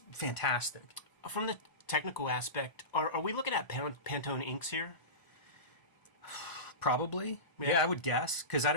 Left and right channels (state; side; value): late; right; 1.0 ms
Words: fantastic. From the technical aspect, are we looking at Pantone inks here? Probably. Yeah, I would guess, because I